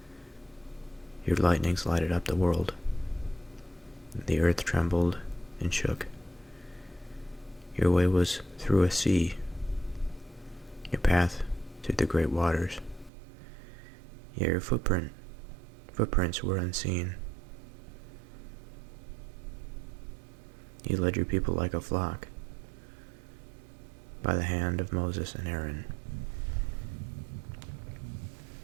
Your lightnings lighted up the world. The earth trembled and shook. Your way was through a sea, your path through the great waters. Yet your footprints were unseen. You led your people like a flock by the hand of Moses and Aaron.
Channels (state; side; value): drops out; left; at 13.1 s